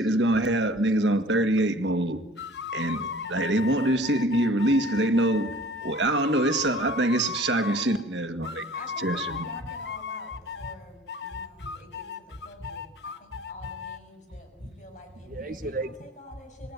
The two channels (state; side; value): normal; both; correlation 0.48